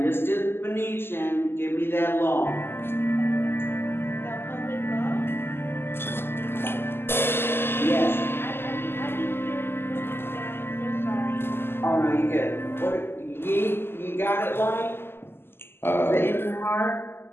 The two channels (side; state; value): right; late; 0.11 ms